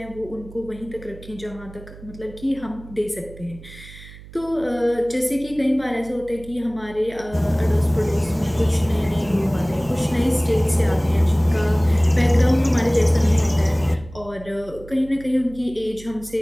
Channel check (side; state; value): right; noise; hum, 18 dB below the sound